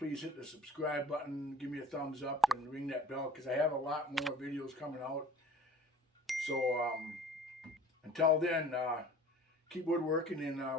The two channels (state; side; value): normal; both; correlation 0.46